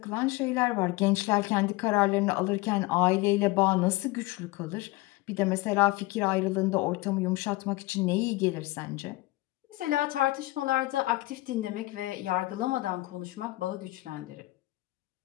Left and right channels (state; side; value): quieter; right; 20.2 dB